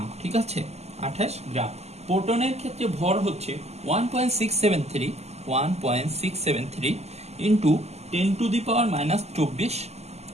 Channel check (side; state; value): left; late; 0.31 ms